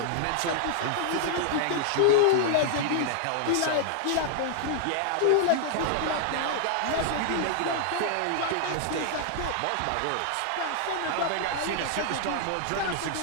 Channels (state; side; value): different; both; correlation 0.00